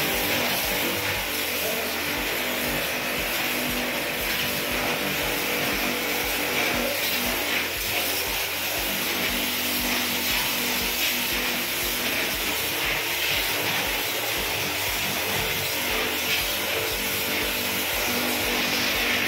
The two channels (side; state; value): both; identical; correlation 1.00